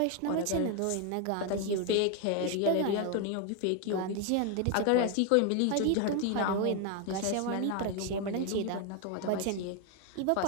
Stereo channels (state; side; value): different; both; correlation 0.01